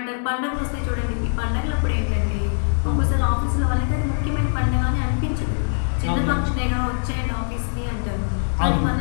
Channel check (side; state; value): right; silent; digital silence